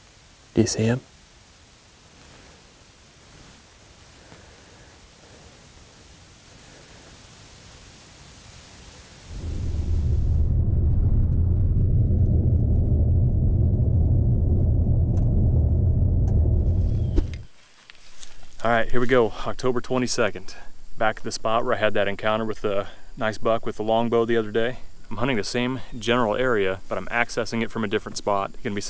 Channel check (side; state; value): both; identical; correlation 1.00